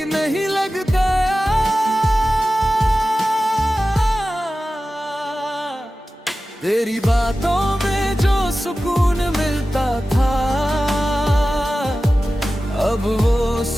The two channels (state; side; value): normal; both; correlation 0.95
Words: नहीं लगता। तेरी बातों में जो सुकून मिलता था, अब वो